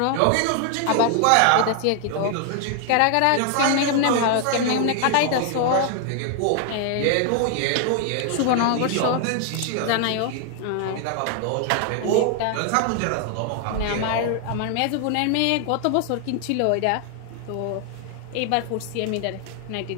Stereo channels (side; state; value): both; different; correlation 0.00